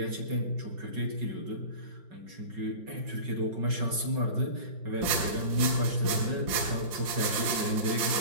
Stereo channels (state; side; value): late; left; 5.7 ms